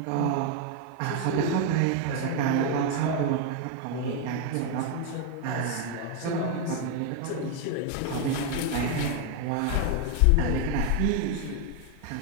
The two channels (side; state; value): both; different; correlation 0.01